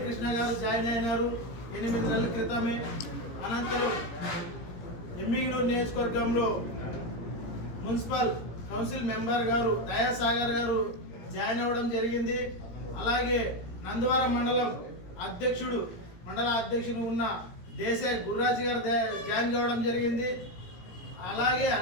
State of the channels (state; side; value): late; right; 17 ms